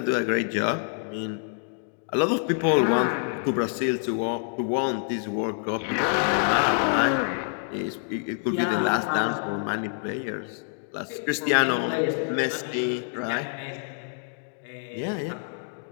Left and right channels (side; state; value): right; silent; 60 dB below the other